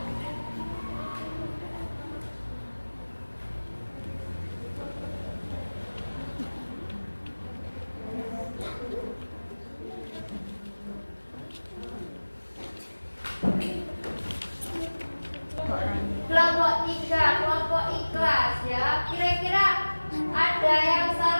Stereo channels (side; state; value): both; inverted; correlation -1.00